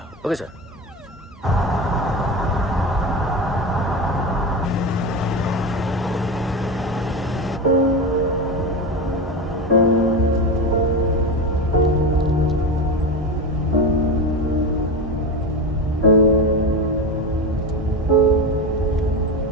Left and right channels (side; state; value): both; normal; correlation 0.20